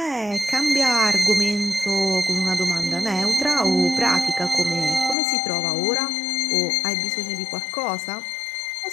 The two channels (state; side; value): drops out; right; at 5.2 s